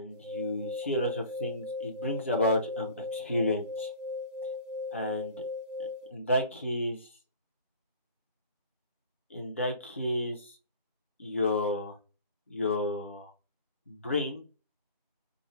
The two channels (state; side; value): inverted; both; correlation -0.43